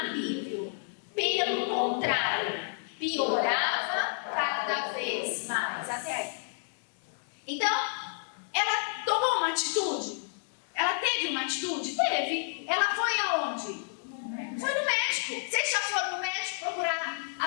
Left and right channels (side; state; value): right; silent; digital silence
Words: Pelo contrário, piorava cada vez mais. Até aí. Então, ela tomou uma atitude? Ela teve uma atitude? Teve. Ela foi aonde? Foi no médico. Vocês já foram no médico procurar